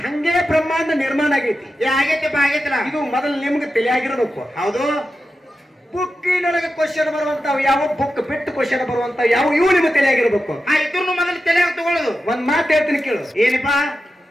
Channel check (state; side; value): normal; both; correlation 0.91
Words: ಹಂಗೆ ಬ್ರಹ್ಮಾಂಡ ನಿರ್ಮಾಣ ಆಗೈತಿ. ಆಗೈತಿಪ್ಪ, ಆಗೈತಿಲ್ಲ. ಇದು ಮೊದಲು ನಿಮ್ಗೆ ತಿಳಿಯಾಗಿರ್ಬೇಕು. ಹೌದು. ಬುಕ್ಕಿನೊಳಗೆ ಕ್ವಶನ್ ಬರುವಂತಾವ್ ಯಾವ, ಬುಕ್ ಬಿಟ್ಟು ಕ್ವಶನ್ ಬರುವಂತ ಯಾವ, ಇವು ನಿಮ್ಗೆ ತಿಳಿಯಾಗಿರ್ಬೇಕು. ಇದ್ರೂ ಮೊದಲು ತಲೆಯಾಗ ತಗೊಳ್ಳೋದು. ಒಂದ್ ಮಾತು ಹೇಳ್ತೀನಿ ಕೇಳು. ಏನಪ್ಪಾ?